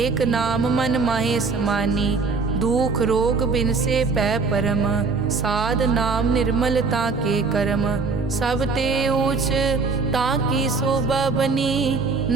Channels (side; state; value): left; quieter; 4.4 dB